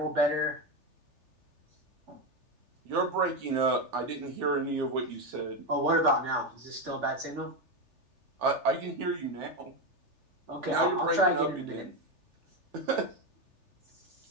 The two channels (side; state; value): left; late; 3.4 ms